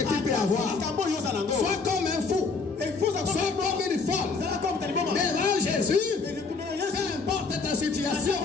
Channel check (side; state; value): right; quieter; 4.4 dB